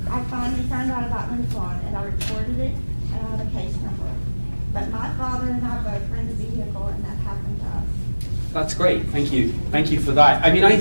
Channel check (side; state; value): both; inverted; correlation -1.00